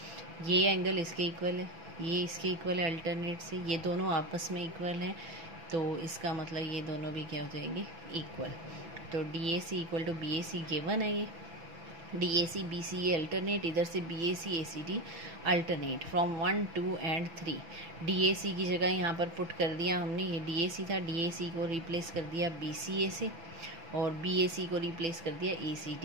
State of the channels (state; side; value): late; left; 6.0 ms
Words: ये एंगल इसके इक्वल है, ये इसके इक्वल है अल्टरनेट से, ये दोनों आपस में इक्वल हैं, तो इसका मतलब ये दोनों भी क्या हो जाएंगे? इक्वल। तो DAC equal to BAC given है। ये DAC BCA अल्टरनेट, इधर से BAC ACD alternate from 1, 2 and 3। DAC की जगह यहाँ पर पुट कर दिया हमने, ये DAC था, DAC को रिप्लेस कर दिया BCA से और BAC को रिप्लेस कर दिया